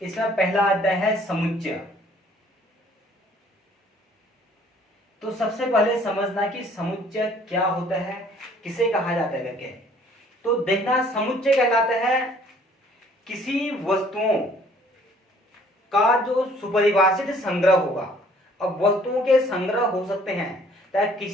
इसमें पहला अध्याय है समुच्चय। तो सबसे पहले समझना कि समुच्चय क्या होता है, किसे कहा जाता है करके। तो देखना समुच्चय कहलाता है किसी वस्तुओं का जो सुपरिभाषित संग्रह होगा। अब वस्तुओं के संग्रह हो सकते हैं, चाहे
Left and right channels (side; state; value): both; normal; correlation 0.58